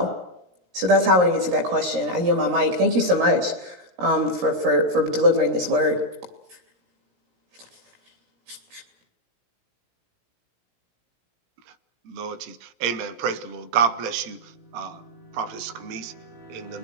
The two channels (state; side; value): late; left; 17 ms